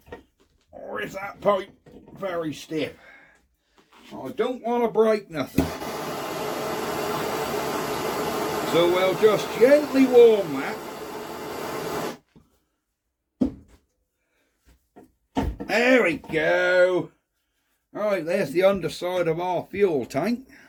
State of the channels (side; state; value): both; identical; correlation 1.00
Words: Or is that pipe very stiff? I don't want to break nothing. So we'll just gently warm that. There we go. Right, there's the underside of our fuel tank.